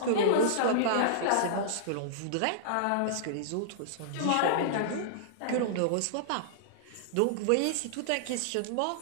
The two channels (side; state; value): both; different; correlation -0.02